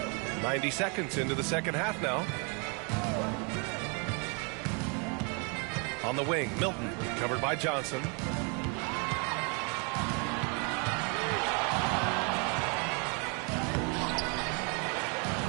90 seconds into the second half now. On the wing, Milton, covered by Johnson. He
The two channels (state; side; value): quieter; left; 35.2 dB